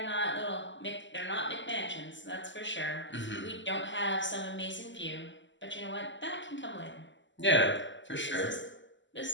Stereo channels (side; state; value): right; late; 0.54 ms